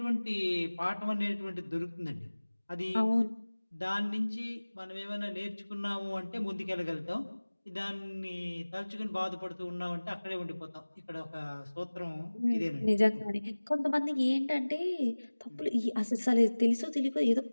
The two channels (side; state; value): both; inverted; correlation -1.00